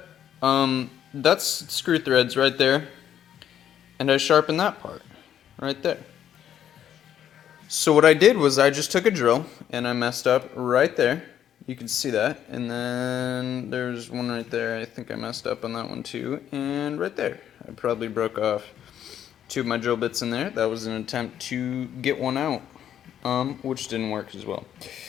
That's screw threads right there. And I sharpened that part right there. So what I did was I just took a drill and I messed up right there. You can see that. And then there's one right there. I think I messed up on that one too. And right there. I probably broke off two of my drill bits in there. That was an attempt to get one out, which didn't work as well.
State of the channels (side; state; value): right; quieter; 10.1 dB